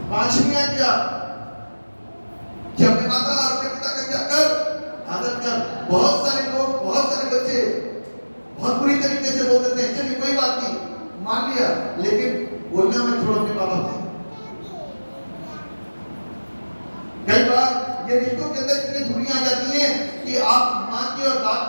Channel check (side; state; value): both; inverted; correlation -1.00